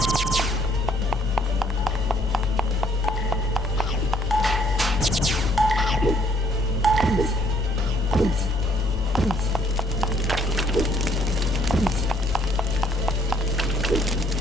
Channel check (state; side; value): normal; both; correlation 0.65